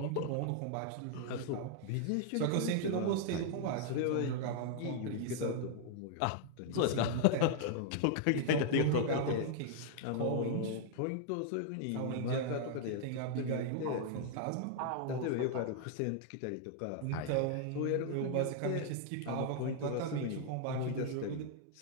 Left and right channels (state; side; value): different; both; correlation -0.01